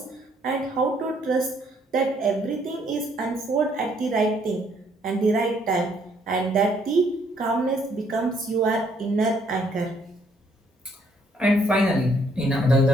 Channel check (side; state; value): both; normal; correlation 0.67